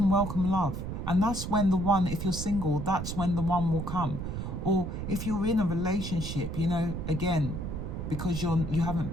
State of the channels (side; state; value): right; noise; rumble, 5 dB below the sound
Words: welcome love. And that's when the one, if you're single, that's when the one will come. Or if you're in a relationship, you know, again, because you